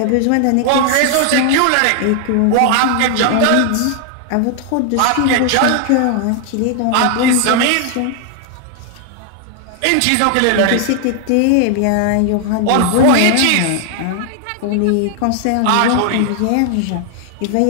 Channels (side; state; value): both; different; correlation 0.00